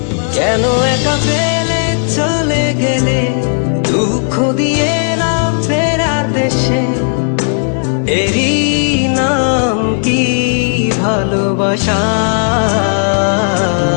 কেন একা ফেলে চলে গেলে, দুঃখ দিয়ে না ফেরার দেশে, এরই নাম কি ভালোবাসা?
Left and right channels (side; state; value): right; silent; digital silence